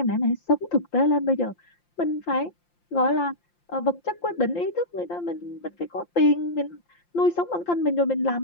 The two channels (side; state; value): right; late; 5.8 ms